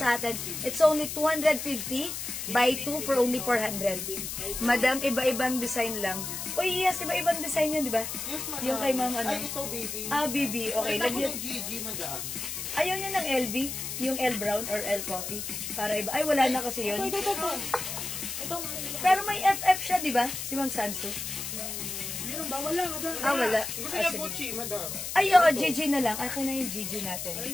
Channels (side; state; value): left; noise; hiss, 5 dB below the sound